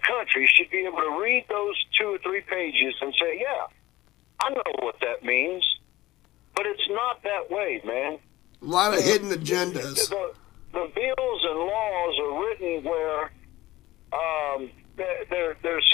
country should be able to read those 2 or 3 pages and say, yeah, I know what that means. But it's not that way, man. A lot of hidden agendas. The bills and laws are written where they're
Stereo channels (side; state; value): right; quieter; 17.4 dB